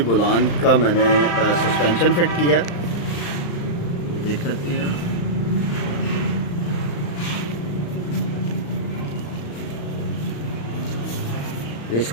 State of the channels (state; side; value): late; right; 35 ms